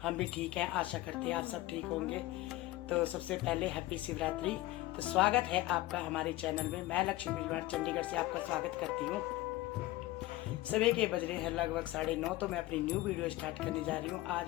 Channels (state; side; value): quieter; right; 17.5 dB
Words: हम भी ठीक हैं, आशा करते हैं आप सब ठीक होंगे। तो सबसे पहले हैप्पी शिवरात्रि। तो स्वागत है आपका हमारे चैनल में। मैं लक्ष्मी बिजवाड़ चंडीगढ़ से आपका स्वागत करती हूँ। सुबह के बज रहे हैं लगभग 9:30। तो मैं अपनी न्यू वीडियो स्टार्ट करने जा रही हूँ। आज